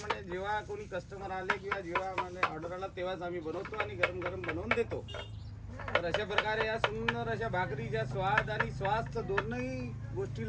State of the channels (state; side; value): identical; both; correlation 1.00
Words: जेव्हा कोणी कस्टमर आले किंवा जेव्हा म्हणे ऑर्डर आला तेव्हाच आम्ही बनवतो आणि गरम गरम बनवून देतो. तर अशा प्रकारे या सुंदर अशा भाकरीच्या स्वाद आणि स्वास्थ्य दोनही